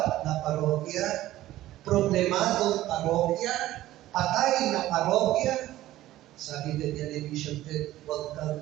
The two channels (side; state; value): left; quieter; 15.1 dB